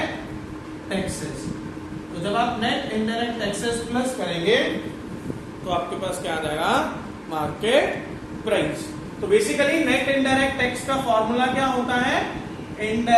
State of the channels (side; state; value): both; identical; correlation 1.00